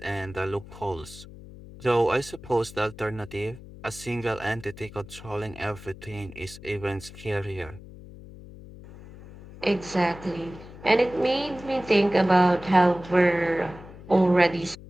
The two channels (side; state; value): left; noise; hum, 17 dB below the sound